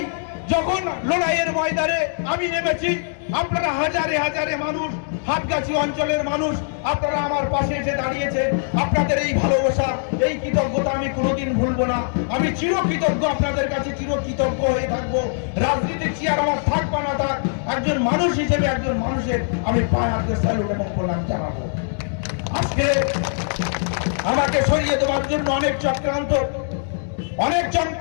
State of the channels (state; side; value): silent; right; digital silence